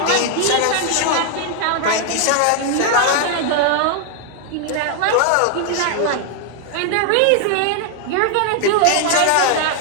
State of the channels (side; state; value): both; different; correlation 0.00